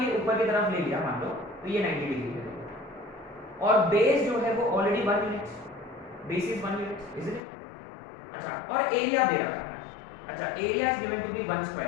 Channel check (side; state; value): right; drops out; at 7.4 s